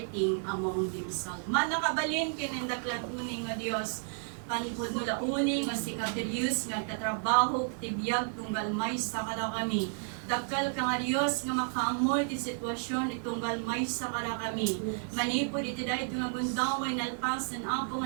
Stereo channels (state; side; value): silent; left; 56 dB below the other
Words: among themselves. Manakabalin kinendaklat uning nga Dios, panpod nula uning nga si Katerius nga tatrabaho tibiyag tunggal may sa kada kami. Dakal ka nga Dios nga makaamoy ti sitwasyon itunggal may sa kada kami. Manipod iti dahil nga gundawan nalpasan apo